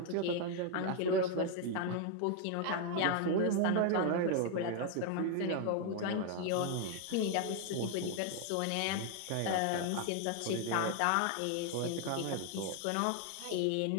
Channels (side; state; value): both; different; correlation 0.00